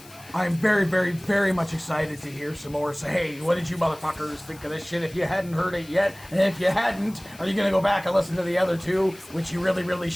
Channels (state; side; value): noise; left; hiss, 22 dB below the sound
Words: I'm very much excited to hear some more. So, hey, what did you motherfuckers think of this shit if you hadn't heard it yet? And if you hadn't, are you gonna go back and listen to the other two, which you really